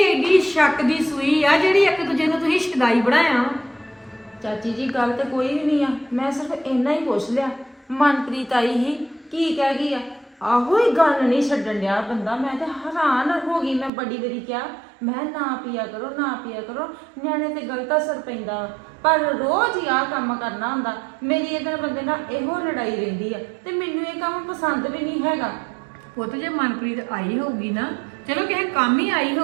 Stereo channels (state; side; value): drops out; left; at 13.9 s